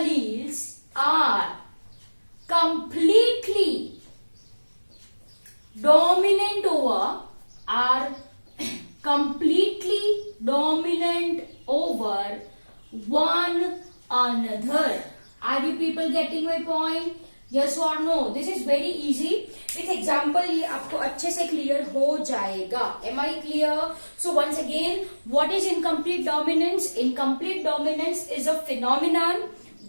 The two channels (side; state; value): both; inverted; correlation -1.00